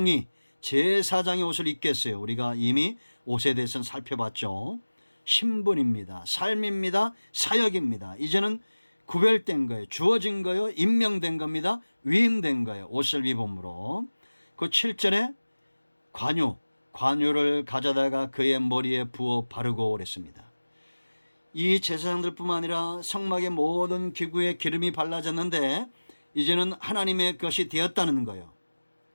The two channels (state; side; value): inverted; both; correlation -1.00